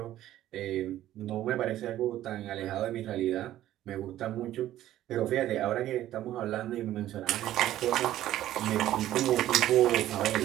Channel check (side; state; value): left; quieter; 13.4 dB